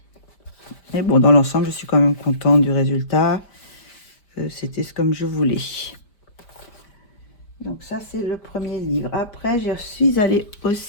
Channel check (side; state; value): right; late; 5.1 ms